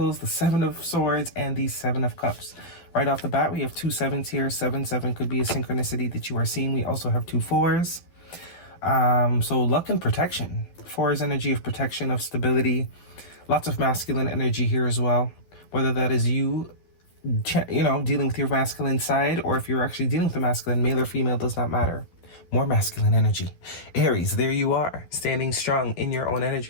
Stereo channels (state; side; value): late; right; 12 ms